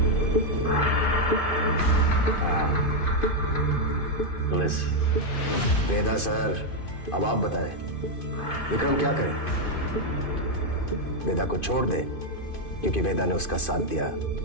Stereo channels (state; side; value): late; right; 2.5 ms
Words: पुलिस वेदा सर, अब आप बताएं विक्रम क्या करे? वेदा को छोड़ दे क्योंकि वेदा ने उसका साथ दिया,